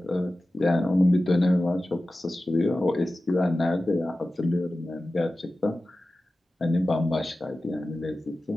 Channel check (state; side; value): normal; both; correlation 0.95